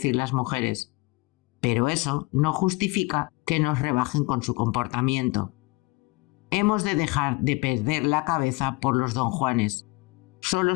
las mujeres. Pero eso no justifica que nos rebajen con su comportamiento. Hemos de dejar de perder la cabeza por los don Juanes.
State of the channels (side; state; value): right; quieter; 24.5 dB